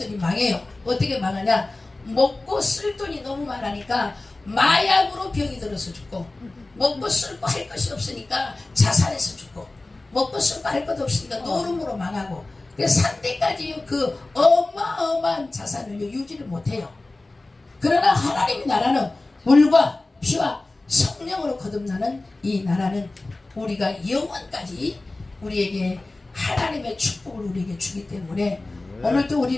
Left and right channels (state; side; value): quieter; right; 3.0 dB